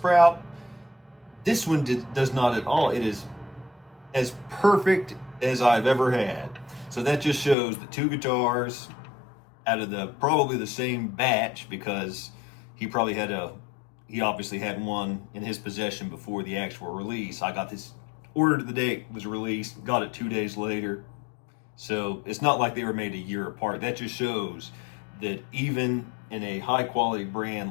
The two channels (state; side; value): drops out; right; at 7.6 s